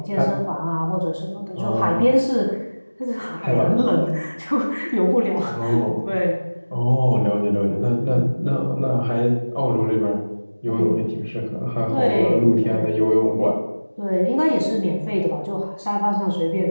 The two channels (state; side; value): inverted; both; correlation -1.00